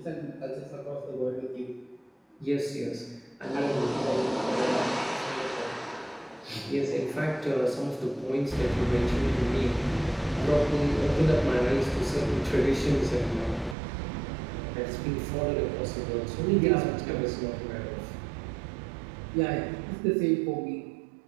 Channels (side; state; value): left; drops out; at 13.8 s